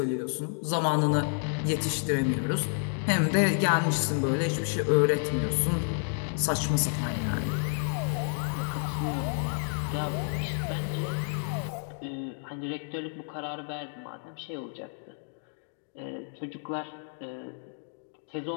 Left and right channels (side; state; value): right; silent; 58 dB below the other